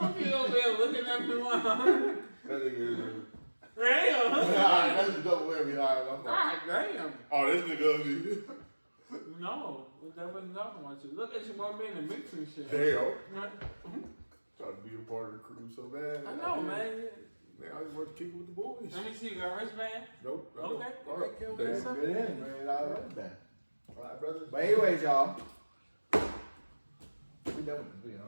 you over there looking at me like, That nigga is. damn. Alright, that's a double whammy. Alright, God damn. oh, this nigga ugly. No, that wasn't talking about you. Look at you one being in the mix and shit. Damn. Right? Trying to be a part of the crew so bad. I know, man. Man, I just want to kick it with the boys. Let me see, you got a wristband? Nope. I Okay. don't. All right. Okay. That's Damn. good in, man. I love that. All right, brother. But anyways, y'all. We done with this video,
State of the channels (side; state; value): both; inverted; correlation -1.00